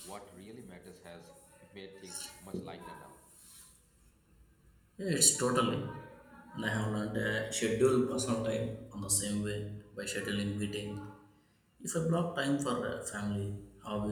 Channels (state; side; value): identical; both; correlation 1.00